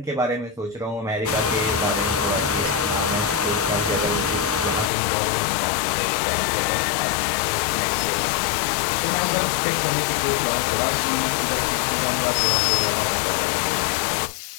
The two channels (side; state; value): right; drops out; at 4.9 s